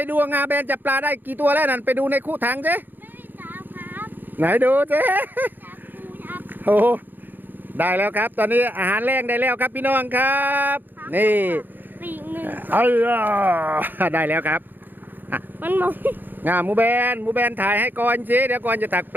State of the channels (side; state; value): left; late; 0.090 ms